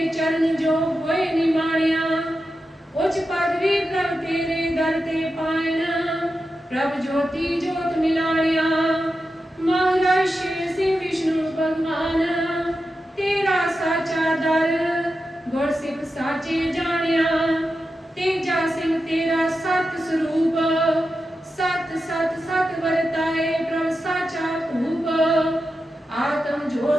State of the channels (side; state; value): both; normal; correlation 0.90